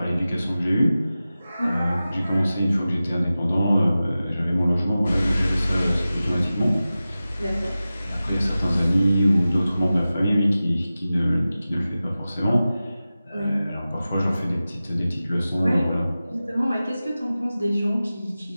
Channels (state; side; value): inverted; both; correlation -0.95